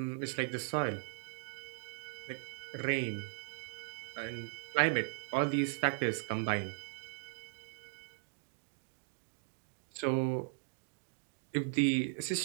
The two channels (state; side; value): silent; left; digital silence